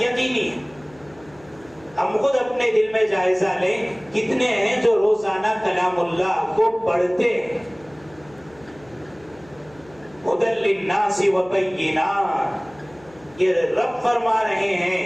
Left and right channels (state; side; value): noise; left; hum, 25 dB below the sound